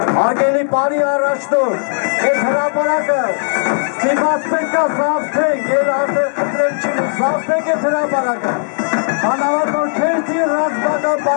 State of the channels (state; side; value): silent; right; 56 dB below the other